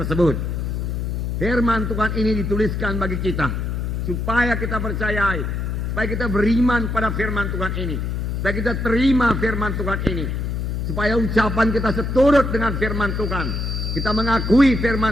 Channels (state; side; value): noise; left; hum, 2 dB below the sound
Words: Firman Tuhan ini dituliskan bagi kita supaya kita percayai, supaya kita beriman pada firman Tuhan ini, supaya kita terima firman Tuhan ini, supaya ucapan kita seturut dengan firman Tuhan. Kita mengakui